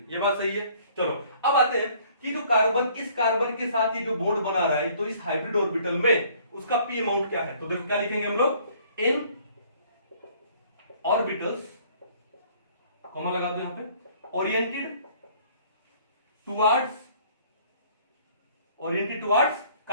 ये बात सही है। चलो अब आते हैं कि जो कार्बन इस कार्बन के साथ ये जो बॉन्ड बना रहा है, तो इस हाइब्रिड ऑर्बिटल में उसका p अमाउंट क्या है, तो देखो क्या लिखेंगे हम लोग, इन ऑर्बिटल्स, कॉमा लगा दो यहां पे, ओरिएंटेड टुवर्ड्स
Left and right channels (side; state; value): both; inverted; correlation -0.57